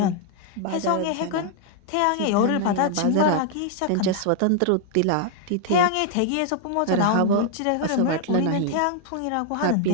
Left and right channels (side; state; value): both; different; correlation 0.00